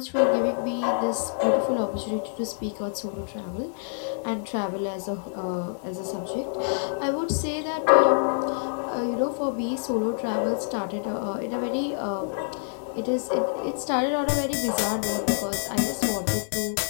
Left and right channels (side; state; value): right; silent; 60 dB below the other